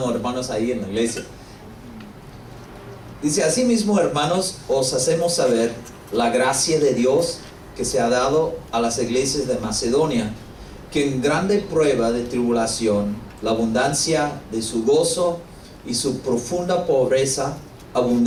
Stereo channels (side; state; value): both; identical; correlation 1.00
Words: hermanos, ahí en la iglesia. Dice: asimismo, hermanos, os hacemos saber la gracia de Dios que se ha dado a las iglesias de Macedonia, que en grande prueba de tribulación, la abundancia de su gozo y su profunda pobreza